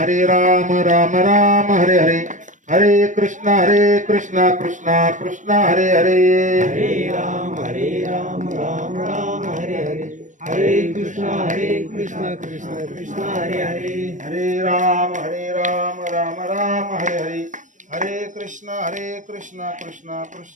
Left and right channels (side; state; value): left; late; 0.37 ms